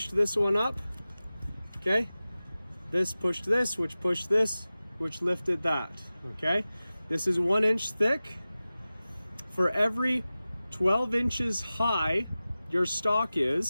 this one up. Okay? This pushed this, which pushed this, which lifted that. Okay? This is 1 inch thick. For every 12 inches high your stock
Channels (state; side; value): inverted; both; correlation -0.96